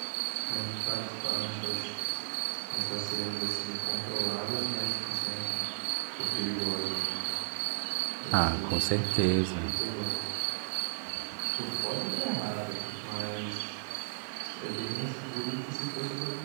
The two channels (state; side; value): silent; left; 55 dB below the other